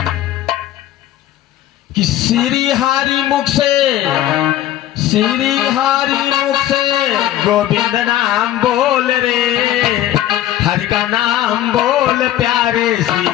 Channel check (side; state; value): right; quieter; 13.1 dB